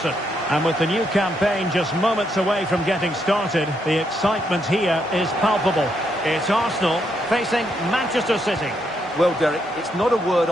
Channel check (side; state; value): both; normal; correlation 0.77